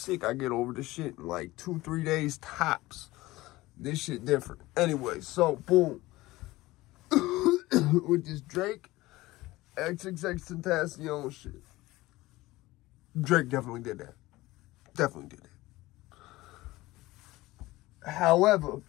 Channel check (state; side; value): quieter; right; 18.9 dB